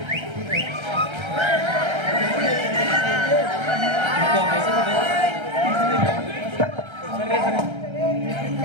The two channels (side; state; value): left; late; 1.3 ms